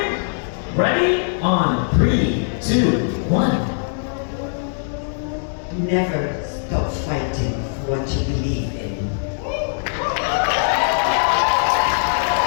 ready, on 3, 2, 1. Never stop fighting for what you believe in.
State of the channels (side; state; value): right; silent; digital silence